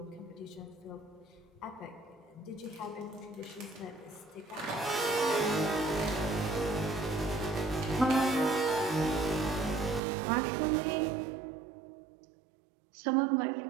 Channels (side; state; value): left; drops out; at 10.0 s